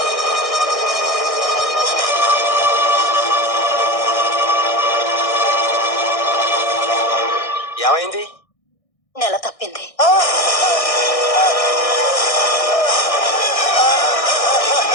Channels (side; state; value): right; late; 1.6 ms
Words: ఏమైంది? నెల తప్పింది.